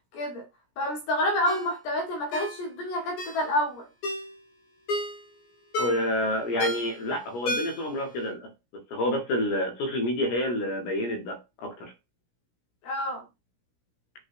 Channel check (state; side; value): late; right; 17 ms